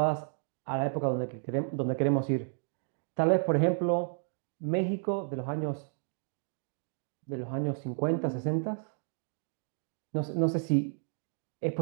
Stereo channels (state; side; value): silent; left; digital silence